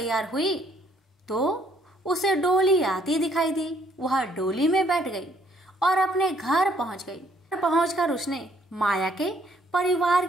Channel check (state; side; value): normal; both; correlation 0.65